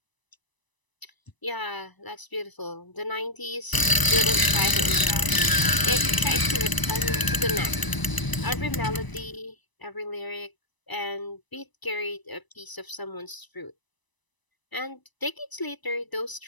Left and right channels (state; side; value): late; right; 1.0 ms